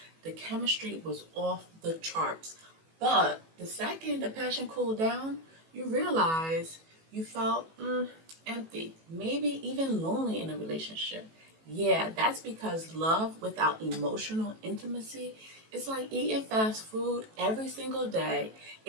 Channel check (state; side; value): late; left; 18 ms